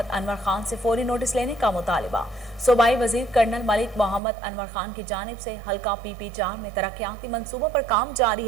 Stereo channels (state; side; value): drops out; left; at 4.2 s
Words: अनवर खान से फौरी नोटिस लेने का मुतालिबा। सूबाई वजीर कर्नल मलिक मोहम्मद अनवर खान की जानिब से हल्का PP4 में तरक्याती मंसूबों पर काम